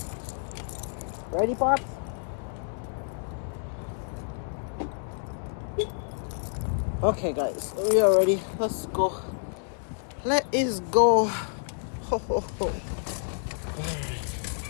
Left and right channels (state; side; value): silent; right; digital silence